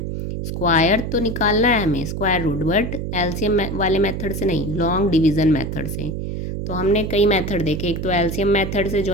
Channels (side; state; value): right; noise; hum, 4 dB below the sound